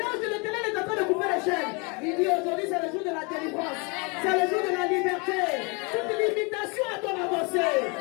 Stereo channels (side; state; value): right; quieter; 31.2 dB